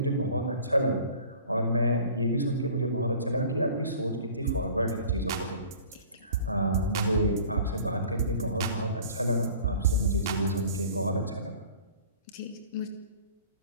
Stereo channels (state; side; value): inverted; both; correlation -0.46